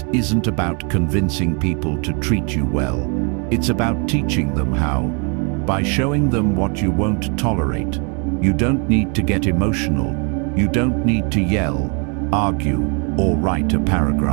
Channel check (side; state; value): left; quieter; 35.4 dB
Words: isn't about convincing people to treat you well. It's about teaching them how. By showing them what you won't tolerate. You don't need to get emotional. You don't need to yell, argue, or write a